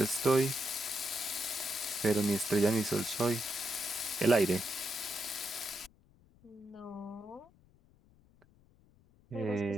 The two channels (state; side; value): noise; left; rumble, 30 dB below the sound